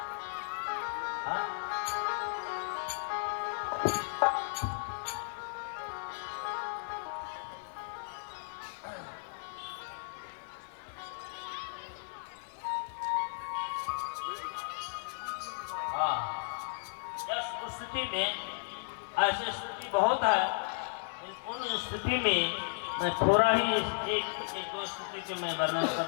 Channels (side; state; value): right; silent; 55 dB below the other